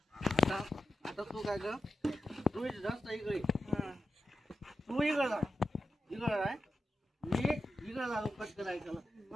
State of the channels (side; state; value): both; normal; correlation 0.90